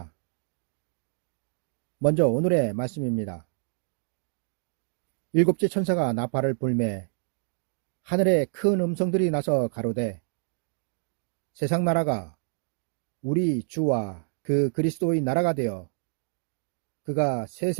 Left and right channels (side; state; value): left; silent; 60 dB below the other